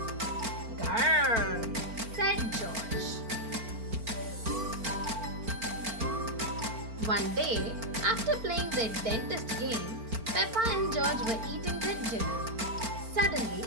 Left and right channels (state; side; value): late; left; 4.4 ms